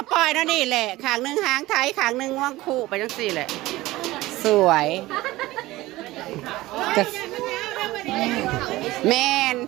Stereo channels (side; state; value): left; quieter; 18.1 dB